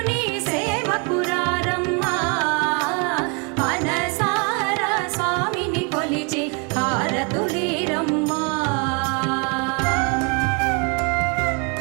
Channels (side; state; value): left; quieter; 33.7 dB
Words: సేవకురారమ్మా మనసారా స్వామిని కొలిచి హారతులీరమ్మా